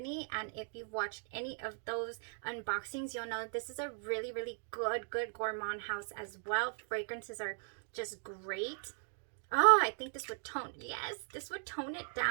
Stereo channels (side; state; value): left; silent; 52 dB below the other